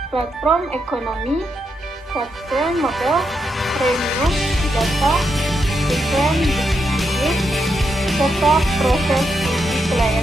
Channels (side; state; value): both; normal; correlation 0.82